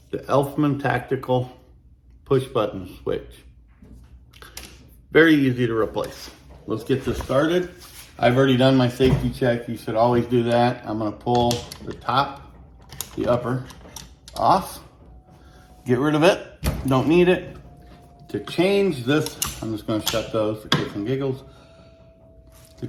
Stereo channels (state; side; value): identical; both; correlation 1.00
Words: the Elfman tactical push button switch. Very easy to replace. Let's get this started. I've already done my safety check. You should always do that. I'm going to pull the top, the upper off. Get rid of it, don't need it. To change this, I'm just gonna shut those for kicks and giggles. To